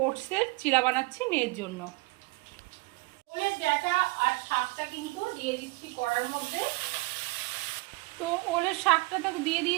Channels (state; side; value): quieter; left; 25.1 dB